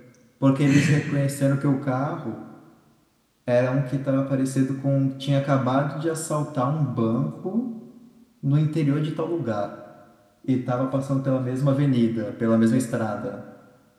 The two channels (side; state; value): both; identical; correlation 1.00